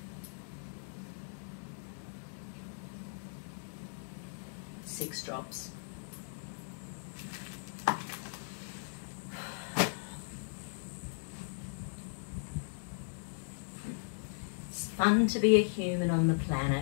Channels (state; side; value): silent; right; digital silence